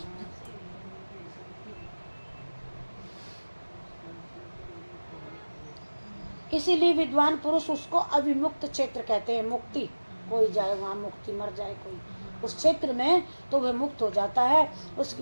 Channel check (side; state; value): both; inverted; correlation -1.00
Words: इसीलिए विद्वान पुरुष उसको अविमुक्त क्षेत्र कहते हैं। मुक्ति, कोई जाए वहाँ मुक्ति, मर जाए कोई उस क्षेत्र में तो वह मुक्त हो जाता है। उसकी